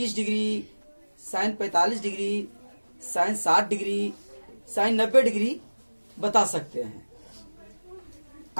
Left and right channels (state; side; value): inverted; both; correlation -1.00